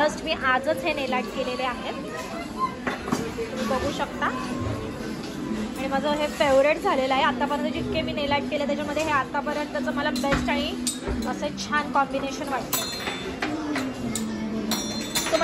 मी आजच हे नेल आर्ट केलेले आहे, तुम्ही बघू शकता. आणि माझं हे फेवरेट झालेलं आहे आतापर्यंत. जितके मी नेल आर्ट केले त्याच्यामध्ये हे आतापर्यंतचं मला बेस्ट आणि असं छान कॉम्बिनेशन वाटतं. तो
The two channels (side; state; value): both; identical; correlation 1.00